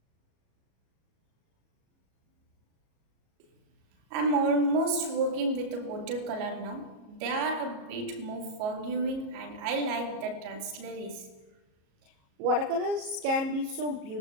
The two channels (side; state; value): left; late; 37 ms